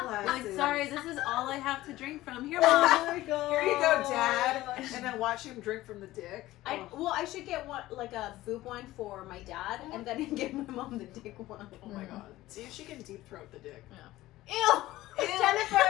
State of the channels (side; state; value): right; quieter; 16.6 dB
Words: Like, sorry, this is all I have to drink from. Here, Oh Mom. my god. Here you go, Dad. And then watch him drink from the dick. I should get one, like a boob one for my dad, and then get my mom the dick one. Oh my god. See if she can deep throat the dick. Ew! Ew. Jennifer!